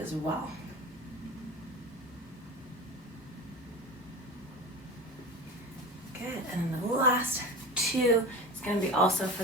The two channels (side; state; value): both; normal; correlation 0.29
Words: as well. Good, and then the last two is going to be also for